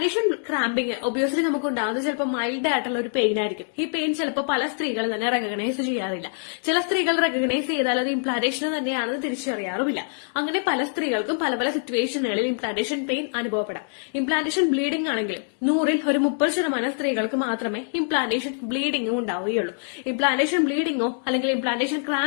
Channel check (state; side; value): silent; right; digital silence